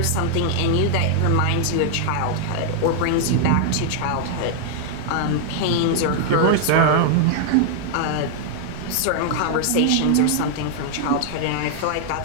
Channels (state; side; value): different; both; correlation 0.00